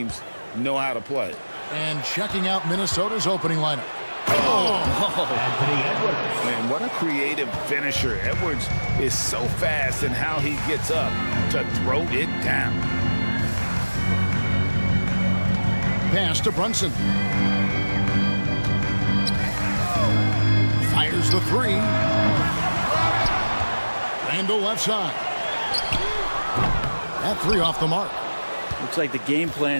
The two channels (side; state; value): both; inverted; correlation -1.00